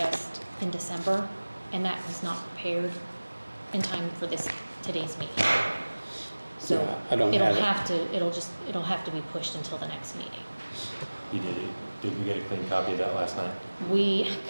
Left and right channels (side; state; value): both; inverted; correlation -1.00